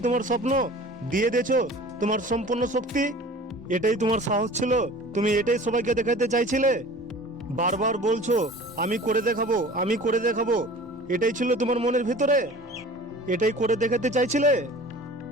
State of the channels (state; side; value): normal; both; correlation 0.43